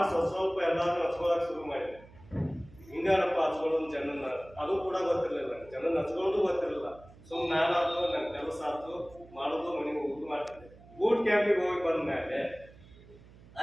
ಸ್ವಲ್ಪ ಎಲ್ಲಾದ್ರೂ ಹಚ್ಕೊಳಕ್ ಶುರು ಮಾಡಿದೆ. ಹಿಂಗಪ್ಪ ಹಚ್ಕೊಳ್ಳೋದು ಜನನ್ನ, ಅದು ಕೂಡ ಗೊತ್ತಿರಲಿಲ್ಲ. ಜನನ್ನ ಹಚ್ಕೊಳ್ಳೋದು ಗೊತ್ತಿರಲಿಲ್ಲ. ಸುಮ್ಮನೆ ನಾನಾದ್ರು ನನ್ನ ಕೆಲಸ ಆಯ್ತು, ಮಾಡೋದು, ಮನೆಗೆ ಊಟ ಮಾಡ್ತಿದ್ದೆ. ಬೂಟ್ ಕ್ಯಾಂಪಿಗೆ ಹೋಗಿ ಬಂದ್ಮೇಲೆ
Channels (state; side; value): noise; right; hum, 22 dB below the sound